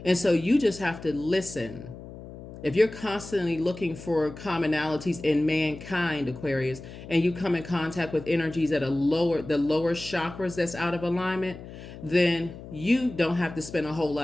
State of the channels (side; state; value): left; noise; hum, 14 dB below the sound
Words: And so you just have to listen. If you're constantly looking for commonalities in mankind, Aquarius, and you come in contact with energies that are the lower chakras that's out of alignment, then you don't have to spend a whole